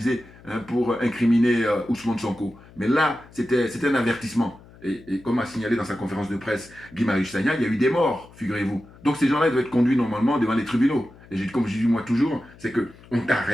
pour incriminer Ousmane Sonko. Mais là, c'était un avertissement. Et comme a signalé dans sa conférence de presse Guy Marius Sagna, il y a eu des morts, figurez-vous. Donc ces gens-là doivent être conduits normalement devant les tribunaux. Et comme je dis moi toujours, c'est qu'on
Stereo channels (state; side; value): noise; left; hum, 23 dB below the sound